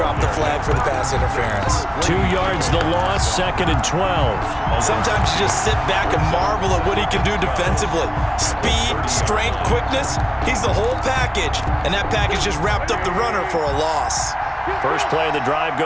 the flag for the pass interference. 2 yards the loss, 2nd and 12. Sometimes you just sit back and marvel at what he can do defensively. Speed, strength, quickness, he's the whole package. And that package just wrapped up the runner for a loss. First play of the drive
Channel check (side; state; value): both; identical; correlation 1.00